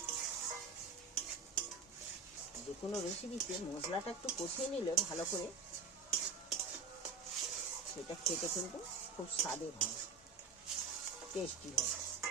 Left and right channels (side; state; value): left; quieter; 4.5 dB